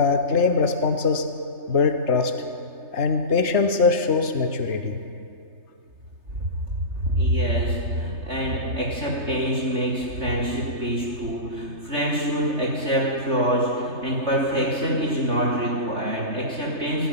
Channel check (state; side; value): late; left; 3.3 ms